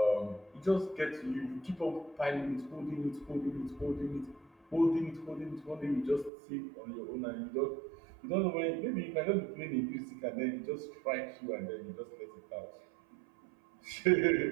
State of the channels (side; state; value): left; drops out; at 6.3 s